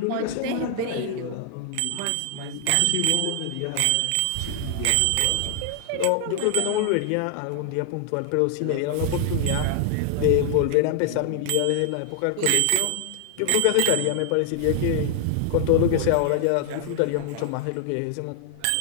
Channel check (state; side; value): different; both; correlation 0.00